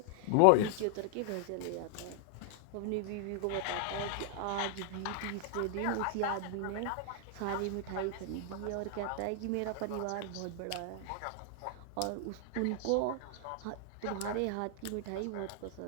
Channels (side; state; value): both; different; correlation 0.00